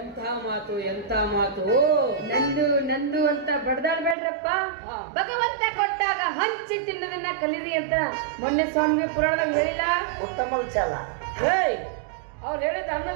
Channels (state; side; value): drops out; left; at 4.2 s